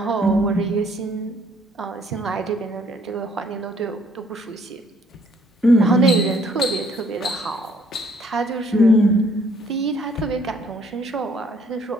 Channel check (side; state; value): both; normal; correlation 0.63